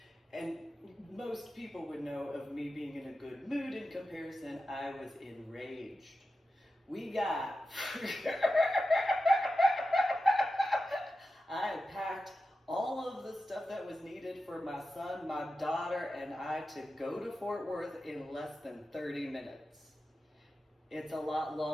And most people would know of me being in a good mood. In comparison, I was enraged. We got... I had packed all of the stuff that was needed for my son, my daughter, and I to go to Fort Worth in less than 30 minutes. It's a lot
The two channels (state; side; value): normal; both; correlation 0.92